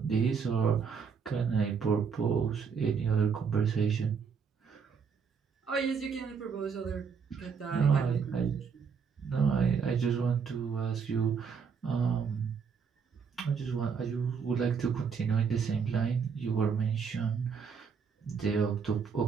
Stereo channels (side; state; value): left; quieter; 6.1 dB